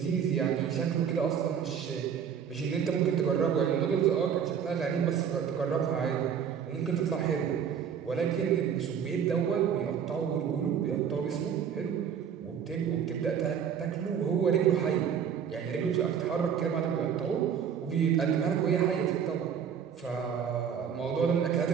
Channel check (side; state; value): left; quieter; 7.8 dB